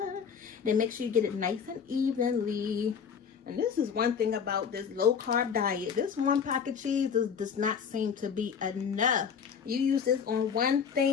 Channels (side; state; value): right; quieter; 6.9 dB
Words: Then make sure you get it nice and evenly. And this is one thing about this low carb diet. This one pack of cheese does not seem to be enough. You use this on one